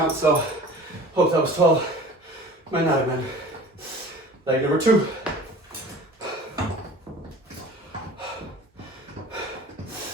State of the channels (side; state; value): both; normal; correlation 0.43